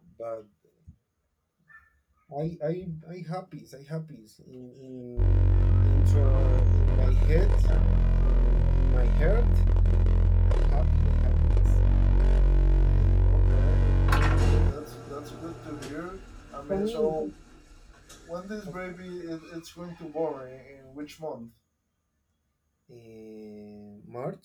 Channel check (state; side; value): identical; both; correlation 1.00